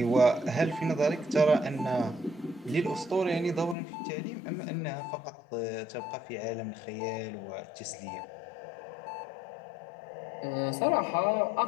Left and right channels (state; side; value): drops out; right; at 3.8 s